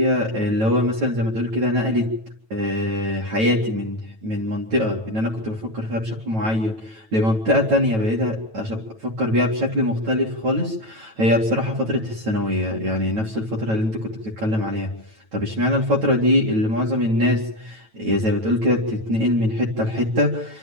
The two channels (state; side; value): late; left; 9.1 ms